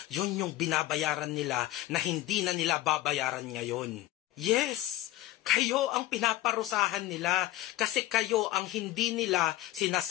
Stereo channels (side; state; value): right; quieter; 16.0 dB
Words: Yun yung binabayaran nila na hindi na nila babayaran ngayon. Yes, kayo ang pinaparusahan nila kasi kayo ang hindi nila